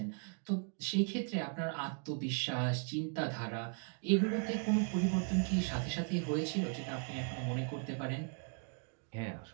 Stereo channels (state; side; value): quieter; left; 39.9 dB